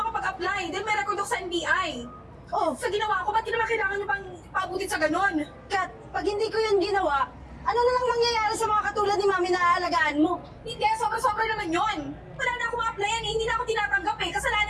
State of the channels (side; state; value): both; identical; correlation 1.00